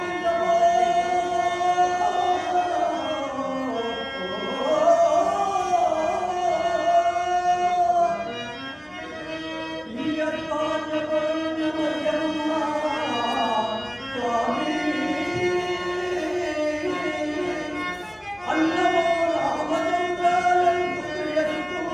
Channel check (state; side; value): identical; both; correlation 1.00